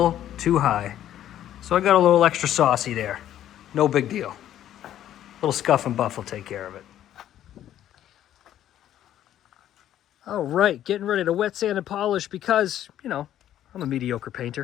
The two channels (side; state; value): right; quieter; 11.7 dB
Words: too high. So I got a little extra saucy there. No big deal. A little scuff and buff will take care of it. All right, getting ready to wet sand and polish because, you know, I'm a mediocre